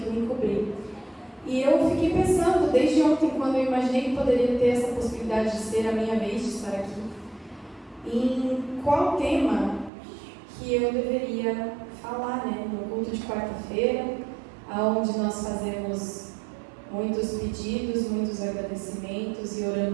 vim cobrir. E eu fiquei pensando, desde ontem, quando eu imaginei que poderia ter essa possibilidade de ser a minha vez de estar aqui, em qual tema que eu deveria falar, né? No culto de quarta-feira, onde nós fazemos muitos pedidos, muitos agradecimentos e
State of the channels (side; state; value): left; drops out; at 9.9 s